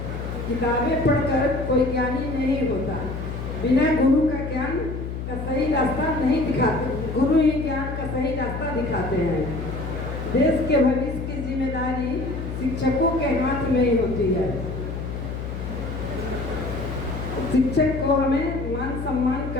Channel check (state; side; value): noise; left; hum, 6 dB below the sound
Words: किताबें पढ़कर कोई ज्ञानी नहीं होता। बिना गुरु का ज्ञान का सही रास्ता नहीं दिखाते, गुरु ही ज्ञान का सही रास्ता दिखाते हैं। देश के भविष्य की जिम्मेदारी शिक्षकों के हाथ में ही होती है। शिक्षक को हमें मान सम्मान